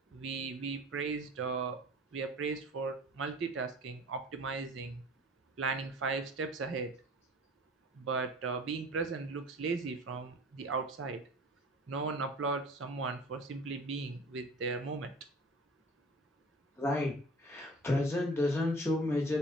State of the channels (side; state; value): both; normal; correlation 0.44